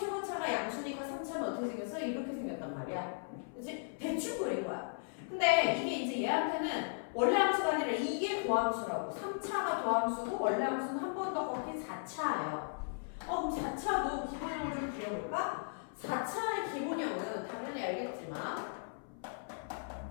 양수니까 3차는 어떻게 생겼어? 이렇게 생겼단 말이야. 그치? 대충 그린 거야. 근데 이게 이제 얘한테는 원래 함수가 아니라 이게 도함수라고. 3차가 도함수고 원래 함수는 한 번 더 꺾인 4차예요. 그럼 4차도 기본형을 좀 그려볼까? 4차의 기본형은 당연히 알겠지만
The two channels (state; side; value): silent; right; 53 dB below the other